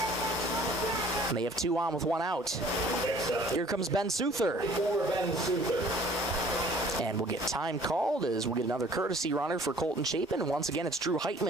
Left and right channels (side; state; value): both; normal; correlation 0.53